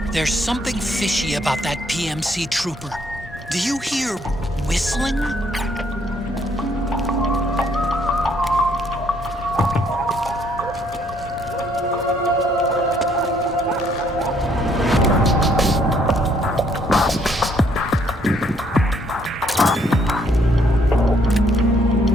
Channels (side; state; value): both; normal; correlation 0.67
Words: There's something fishy about that PMC trooper. Do you hear whistling?